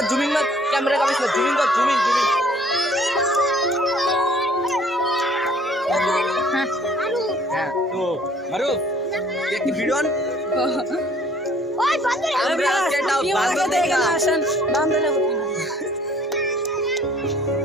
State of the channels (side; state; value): both; normal; correlation 0.57